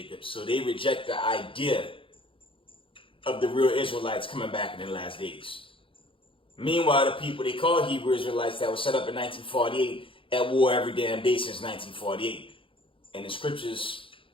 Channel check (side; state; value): right; late; 0.25 ms